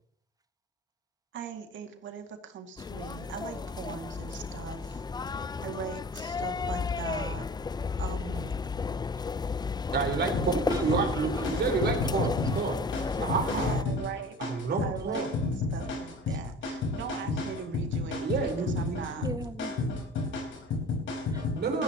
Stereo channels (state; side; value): normal; both; correlation 0.41